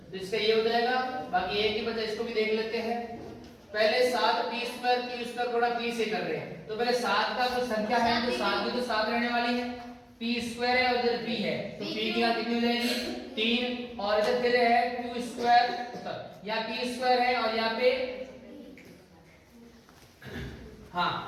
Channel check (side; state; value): both; identical; correlation 1.00